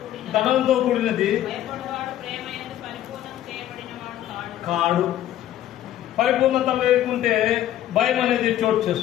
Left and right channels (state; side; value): quieter; right; 12.4 dB